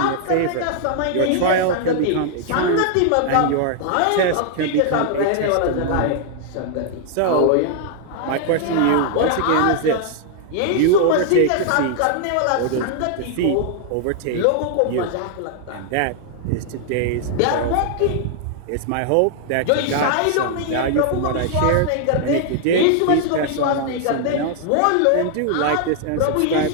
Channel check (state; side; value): different; both; correlation 0.00